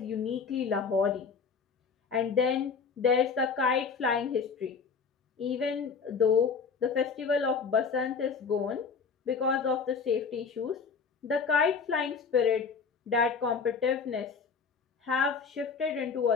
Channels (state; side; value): quieter; right; 5.5 dB